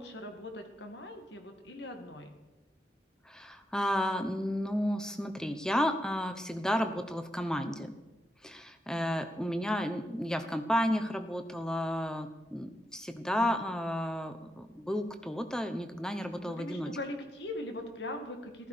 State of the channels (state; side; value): normal; both; correlation 0.84